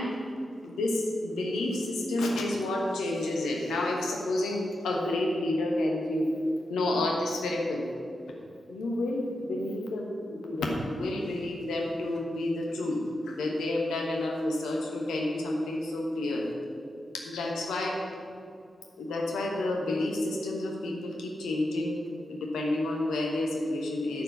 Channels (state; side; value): normal; both; correlation 0.87